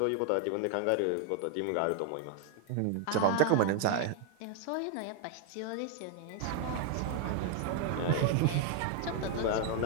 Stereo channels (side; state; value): both; different; correlation 0.00